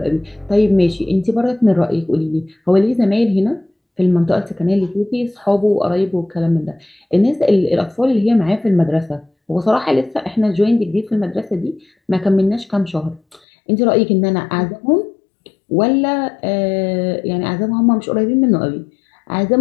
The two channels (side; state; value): right; drops out; at 13.4 s